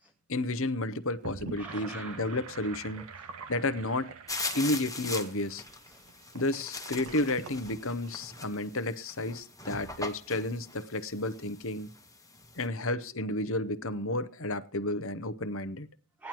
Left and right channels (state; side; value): normal; both; correlation 0.09